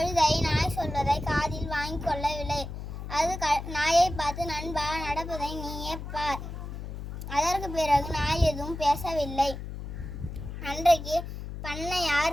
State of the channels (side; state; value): left; noise; hum, 8 dB below the sound